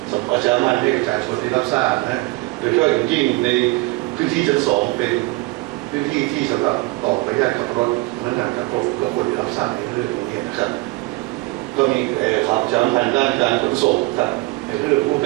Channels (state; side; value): quieter; left; 22.9 dB